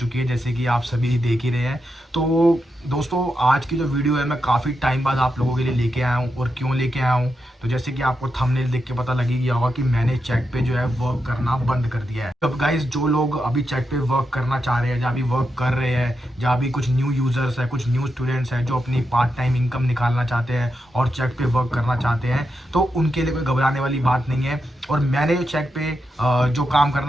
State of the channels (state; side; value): normal; both; correlation 0.86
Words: है जैसे कि आप सभी देख ही रहे हैं। तो दोस्तों, आज की जो वीडियो है मैं काफ़ी टाइम बाद आप लोगों के लिए लेके आया हूँ। और क्यों लेके आया हूँ, तो जैसे कि आपको थंबनेल देख के पता लग ही गया होगा कि मैंने चैट पे जो है वर्क करना बंद कर दिया है। अब गाइस, जो लोग अभी चैट पे वर्क करना चाह रहे हैं, जहाँ भी वर्क कर रहे हैं, जहाँ भी कुछ न्यू यूज़र्स है, कुछ न्यू स्टूडेंट्स हैं जो अपनी पार्ट टाइम इनकम निकालना चाहते हैं और चैट पे वर्क करना चाहते हैं, तो उनके लिए कोई घबराने वाली बात नहीं है। और मैंने चैट पे जो काम